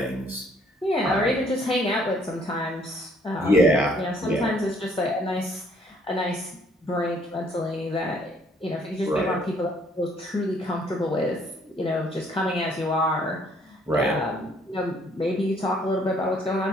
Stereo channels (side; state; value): both; normal; correlation 0.63